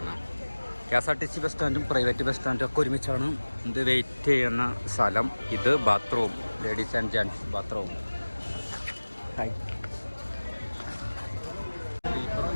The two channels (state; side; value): inverted; both; correlation -1.00